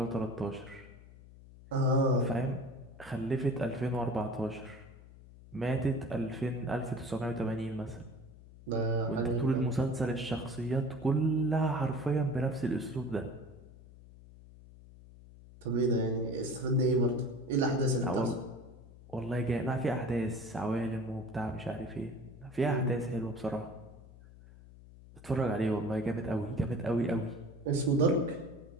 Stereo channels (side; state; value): left; noise; hum, 20 dB below the sound